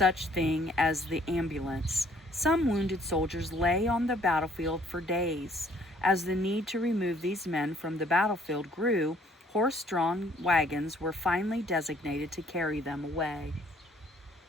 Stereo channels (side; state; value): both; normal; correlation 0.61